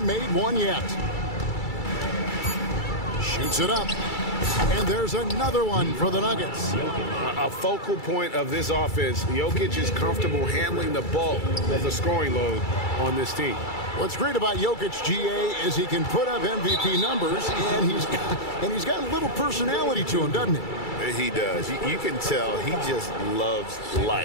made one yet. Shoots it up. And there's another one for the Nuggets. A focal point of this offense. Jokic is comfortable handling the bulk of the scoring load on this team. What's great about Jokic, GA, is he can put up MVP numbers, and he's got a little personality to him, doesn't he? He does. You can tell he just loves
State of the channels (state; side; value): late; right; 2.3 ms